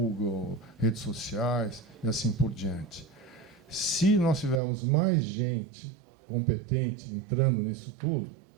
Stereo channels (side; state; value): left; drops out; at 4.6 s